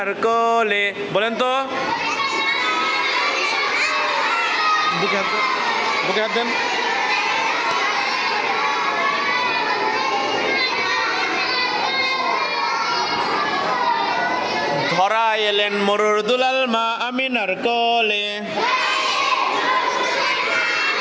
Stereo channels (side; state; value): both; identical; correlation 1.00